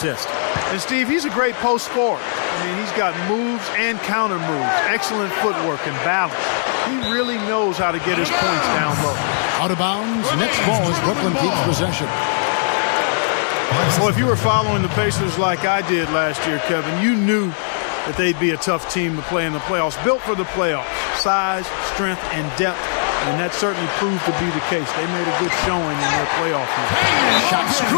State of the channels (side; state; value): right; silent; digital silence